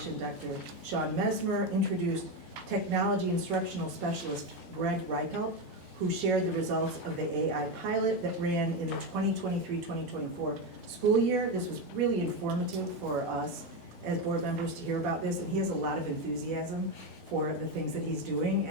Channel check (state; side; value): normal; both; correlation 0.12